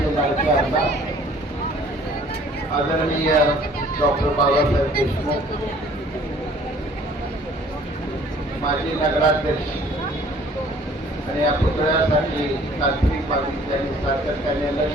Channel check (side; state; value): both; normal; correlation 0.55